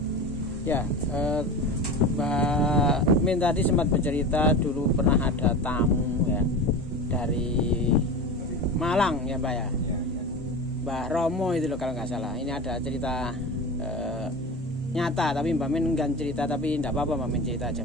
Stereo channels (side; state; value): both; normal; correlation 0.29